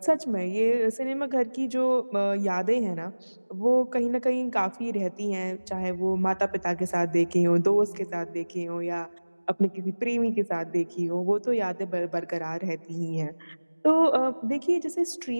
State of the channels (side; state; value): both; inverted; correlation -1.00